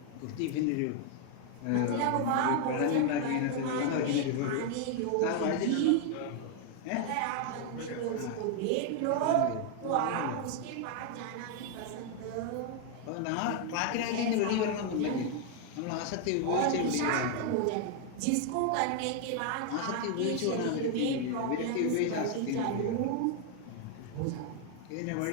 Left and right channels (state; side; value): different; both; correlation 0.00